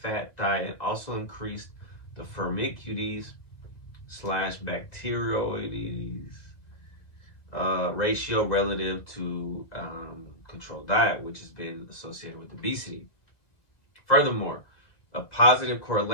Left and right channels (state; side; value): late; right; 1.9 ms